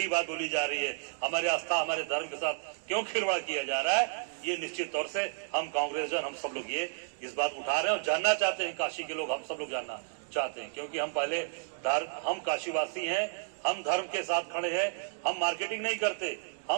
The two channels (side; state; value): left; silent; digital silence